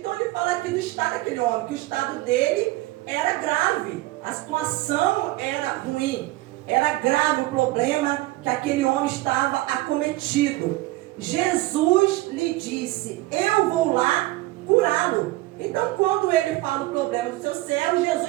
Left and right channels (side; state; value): left; quieter; 18.8 dB